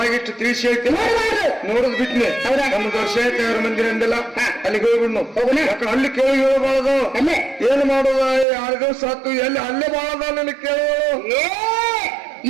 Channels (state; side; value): drops out; left; at 8.5 s